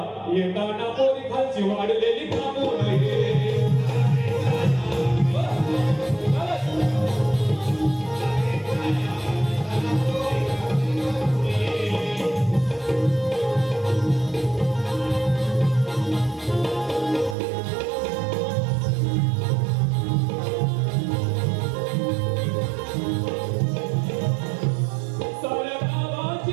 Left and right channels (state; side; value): drops out; left; at 17.4 s